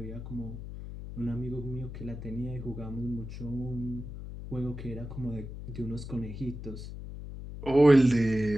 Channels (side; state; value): left; noise; hum, 10 dB below the sound